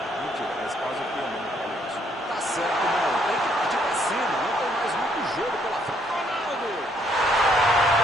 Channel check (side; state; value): both; normal; correlation 0.69